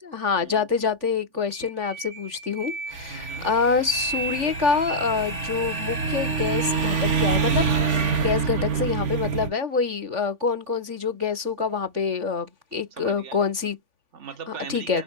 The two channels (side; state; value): left; late; 3.5 ms